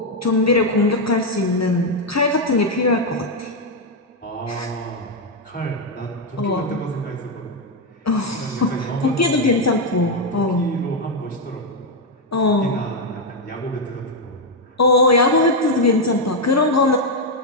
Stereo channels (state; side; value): normal; both; correlation 0.02